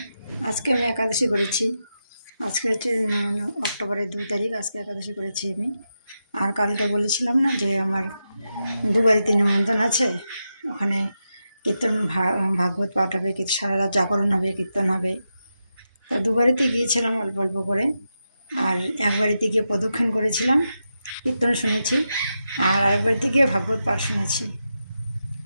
আজকে আমি একাদশী করেছি। আজকে হচ্ছে অক্টোবরের 2 তারিখ। আজকে একাদশী করেছি আমি। আর কালকে বলেছিলাম না যে আমার দুবারিতে নিমন্ত্রণ আছে, ওখানে কীর্তন ভাগবত পাঠ হবে, সারা রাত জাগরণ হবে, কীর্তন হবে। তা দুবারিতে গিয়েছিলাম অল্প অল্প করে। আর একবারিতে গিয়ে প্রদক্ষিণ করেছিলাম, কীর্তন শুনেছি। আর আরেকবারিতে গিয়ে ভাগবত পাঠ শুনেছি,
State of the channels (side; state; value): both; inverted; correlation -0.88